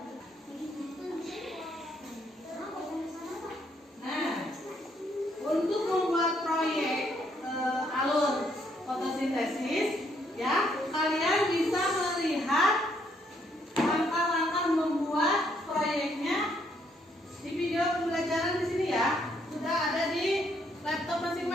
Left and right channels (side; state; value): both; normal; correlation 0.71